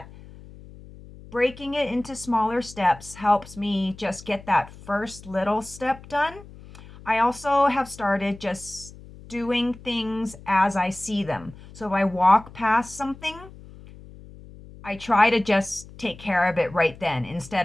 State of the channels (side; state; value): left; noise; hum, 19 dB below the sound